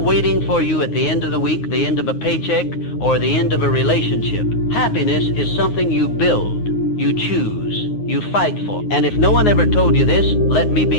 for you at the end of the week, the end of a paycheck, or the end of a relationship. Happiness is something you build, you choose, you fight for. And if no one ever told you this, let me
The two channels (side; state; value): right; late; 9.6 ms